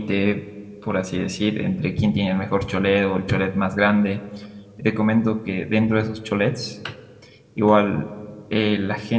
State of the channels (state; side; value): identical; both; correlation 1.00